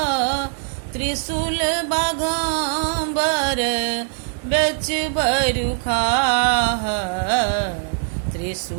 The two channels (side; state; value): left; silent; digital silence